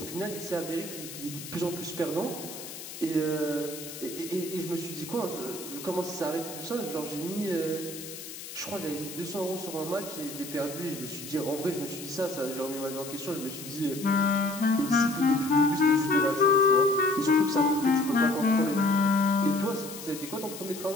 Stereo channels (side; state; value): left; noise; hiss, 12 dB below the sound